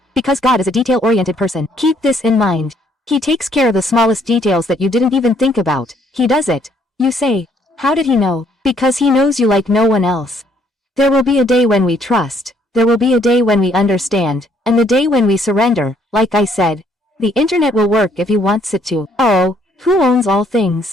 Because God is a detail-oriented person. Keep this in mind. He takes care of the smallest details that you didn't even think about. He does it. You say, how did he know? Because he knows you like no one else. There will be a day when we trust. There will be a day when we understand. And the day when we surrender, like I said. The internet will work if he wants it to. Oh, who owns all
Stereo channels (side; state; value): both; normal; correlation 0.66